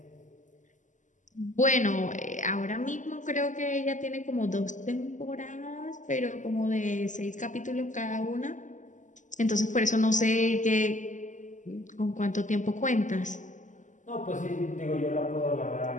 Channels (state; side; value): late; right; 0.36 ms